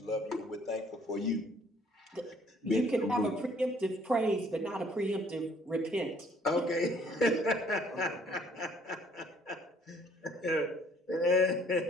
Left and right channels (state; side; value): normal; both; correlation 0.60